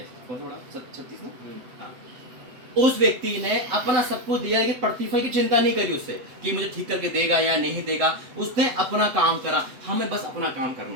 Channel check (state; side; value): late; left; 7.9 ms